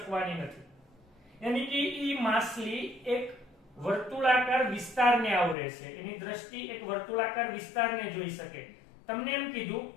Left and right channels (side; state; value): right; drops out; at 5.6 s